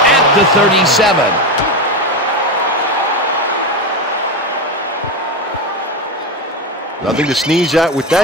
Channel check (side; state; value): both; normal; correlation 0.16